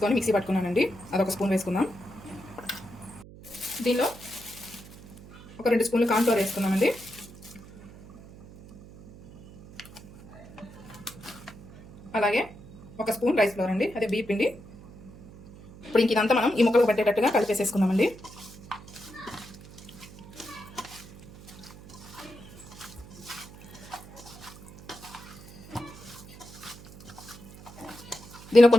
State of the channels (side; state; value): right; noise; hum, 19 dB below the sound